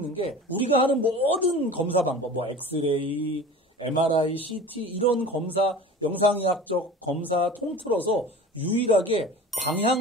게 우리가 하는 모든 검사 방법, 엑스레이, MRI, CT 이런 검사, 영상의학적 검사 통틀어서 유일하게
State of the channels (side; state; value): both; normal; correlation 0.38